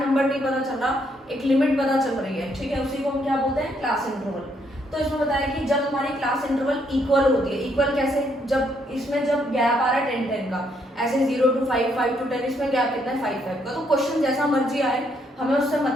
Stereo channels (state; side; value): normal; both; correlation 0.72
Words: नंबर नहीं पता चल रहा, एक लिमिट पता चल रही है, ठीक है, उसी को हम क्या बोलते हैं, क्लास इंटरवल। तो इसमें बताया कि जब हमारी क्लास इंटरवल इक्वल होती है, इक्वल कैसे, जब इसमें जब गैप आ रहा है 10-10 का, ऐसे 0 to 5, 5 to 10, इसमें गैप कितना है, 5-5 का। तो क्वेश्चन जैसा मर्जी आए, हमें उससे